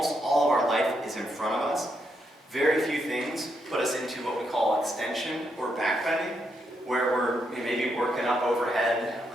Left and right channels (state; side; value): normal; both; correlation 0.79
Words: all of our life is in front of us. Very few things put us into what we call extension or back bending, where we're maybe working up overhead,